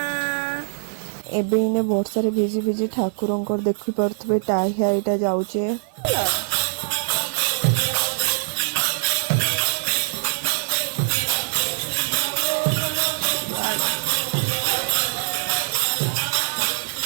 एबे इने वर्षा रे भिजी भिजी ठाकुर देखी पारे टाइया यहाँ जाऊे।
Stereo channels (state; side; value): silent; left; 61 dB below the other